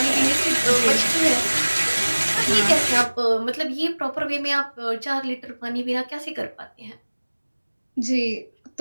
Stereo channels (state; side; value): inverted; both; correlation -1.00